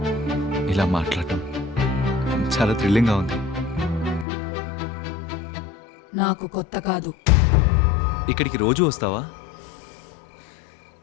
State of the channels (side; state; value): right; drops out; at 4.2 s